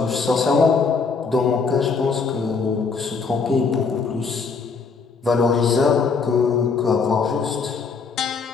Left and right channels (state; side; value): quieter; right; 5.0 dB